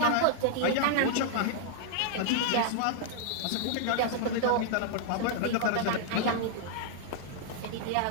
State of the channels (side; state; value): both; different; correlation -0.01